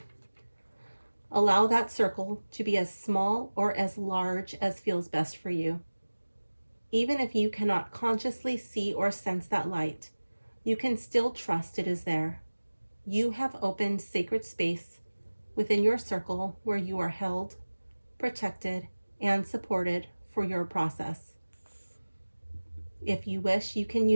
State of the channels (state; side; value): inverted; both; correlation -1.00